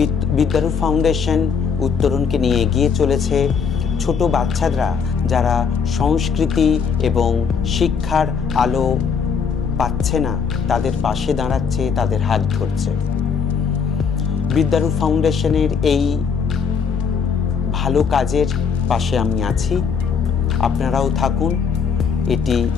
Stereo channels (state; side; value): quieter; right; 6.1 dB